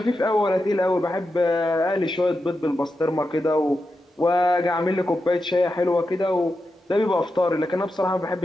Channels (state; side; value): normal; both; correlation 0.89